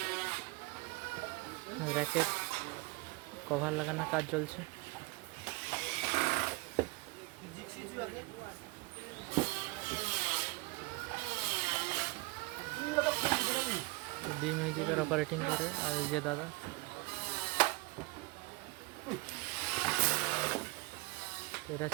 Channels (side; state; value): left; quieter; 24.8 dB